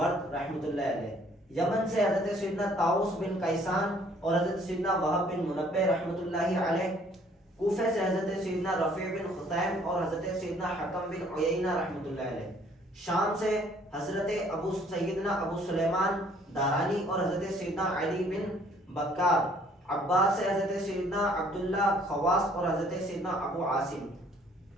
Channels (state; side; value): normal; both; correlation 0.60